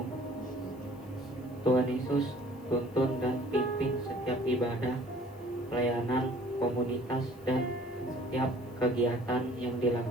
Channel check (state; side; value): noise; left; hiss, 30 dB below the sound